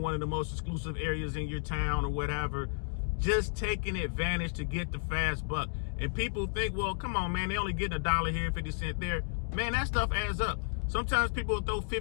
one of the most exclusive areas in your town or whatever, just taking advantage to get the fast buck. And people think, well, come on, man, they only getting $1 here, 50 cents there. Man, that stuff adds up. Sometimes people will throw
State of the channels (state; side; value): silent; right; 56 dB below the other